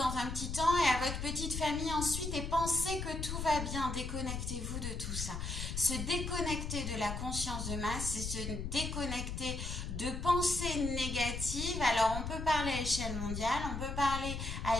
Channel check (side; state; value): left; noise; rumble, 5 dB below the sound